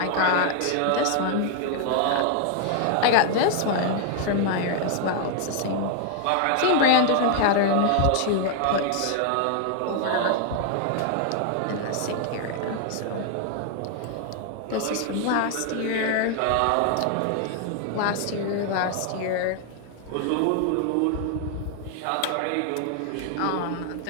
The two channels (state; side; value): different; both; correlation 0.00